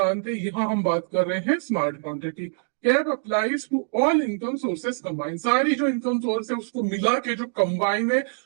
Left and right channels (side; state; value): left; silent; digital silence